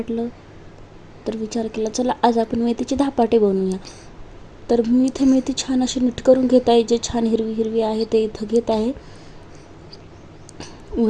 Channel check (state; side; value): identical; both; correlation 1.00